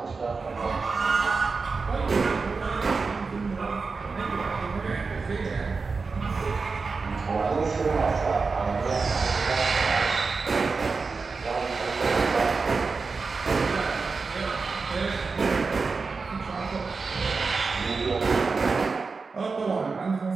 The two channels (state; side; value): quieter; left; 4.5 dB